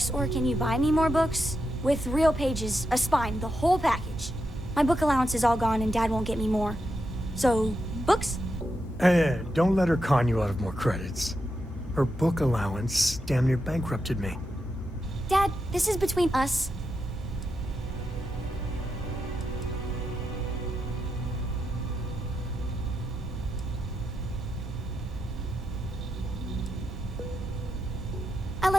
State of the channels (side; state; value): both; normal; correlation 0.86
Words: or can you buy me more books? With real pages, a spine, the whole package. My book allowance is all gone and Dad won't get me more. So, books? Hey, don't let her con you out of more credits. Her book allowance damn near bankrupted me. Dad, this is between us. I